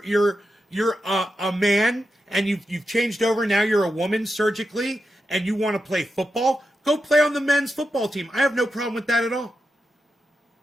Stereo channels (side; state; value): both; normal; correlation 0.88